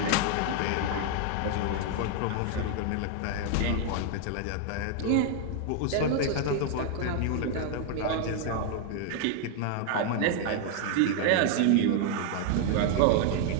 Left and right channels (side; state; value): both; different; correlation 0.00